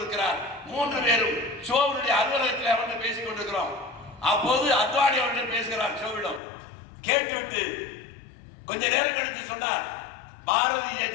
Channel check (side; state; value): right; drops out; at 6.4 s